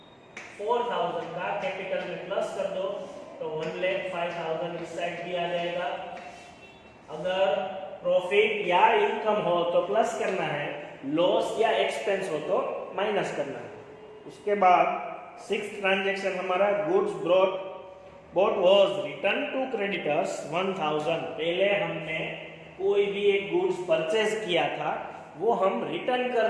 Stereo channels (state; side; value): identical; both; correlation 1.00